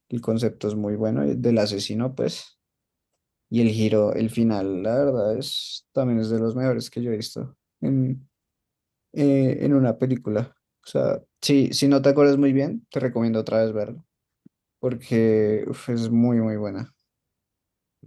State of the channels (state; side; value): identical; both; correlation 1.00